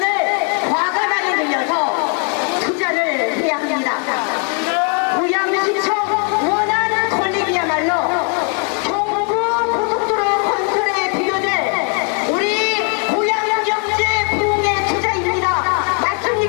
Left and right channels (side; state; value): right; quieter; 38.7 dB